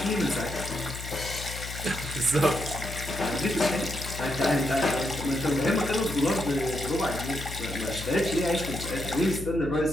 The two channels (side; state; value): left; noise; hum, 9 dB below the sound